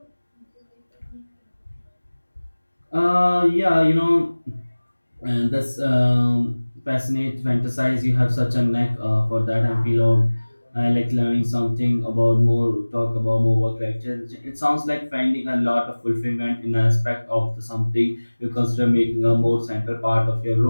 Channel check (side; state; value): both; inverted; correlation -1.00